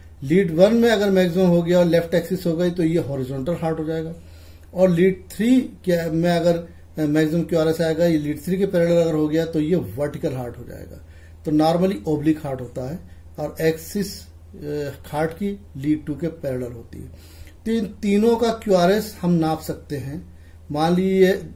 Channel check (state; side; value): identical; both; correlation 1.00